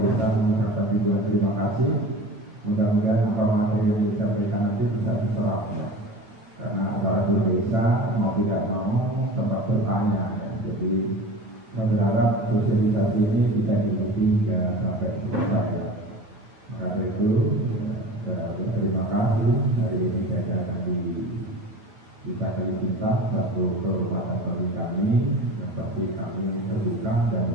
mengucapkan terima kasih. Mudah-mudahan apa materi yang disampaikan nanti bisa diserap, ya. Karena para desa mau tidak mau tetap bertanya. Jadi saya berharap sosialisasi ini bisa diikuti hingga sampai selesai. Maka dari itu, saya berterima kasih. Hari ini saya akan bisa kita satu kehormatan bagi kami, yang pasti kami terbuka dan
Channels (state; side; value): late; left; 9.6 ms